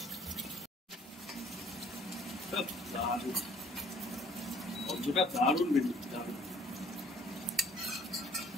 গন্ধটা দারুণ বেরোচ্ছে, দারুণ।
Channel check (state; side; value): normal; both; correlation 0.57